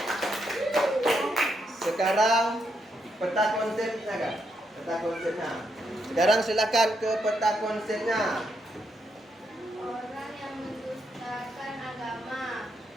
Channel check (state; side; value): normal; both; correlation 0.79